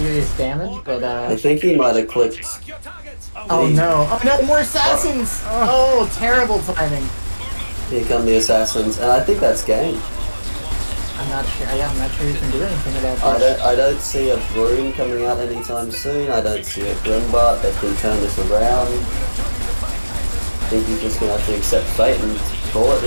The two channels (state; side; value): inverted; both; correlation -1.00